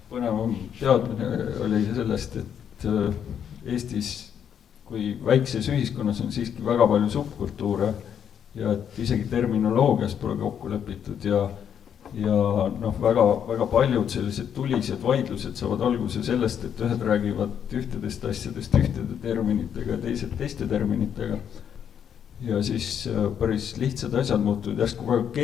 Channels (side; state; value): right; quieter; 8.5 dB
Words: põnevam teadmine oli sellest, et Eestis kui väikses ühiskonnas on siiski väga palju subkultuure ja et isegi terminoloogias pole kokku lepitud ja väga paljud sellised tulised vaidlused saavad alguse sellest, et ühed räägivad ühtedest asjadest ühtede terminitega ja teised teiste terminitega. Ja siis päris lihtsad asjad muutuvad järsku väga